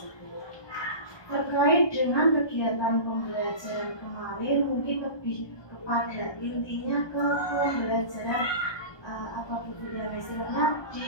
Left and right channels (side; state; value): right; late; 1.2 ms